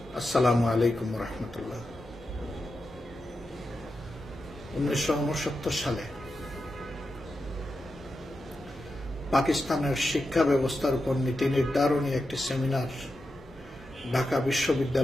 আসসালামু আলাইকুম ওয়া রাহমাতুল্লাহ। 1969 সালে পাকিস্তানের শিক্ষা ব্যবস্থার উপর নীতি নির্ধারণী একটি সেমিনার ঢাকা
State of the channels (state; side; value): normal; both; correlation 0.89